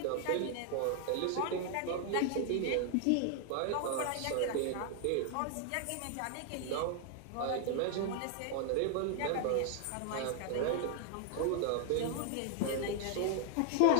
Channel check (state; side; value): different; both; correlation 0.00